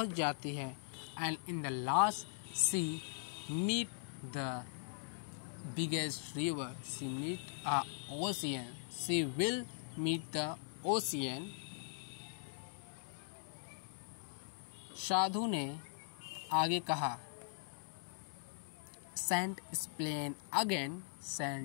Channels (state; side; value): silent; right; 51 dB below the other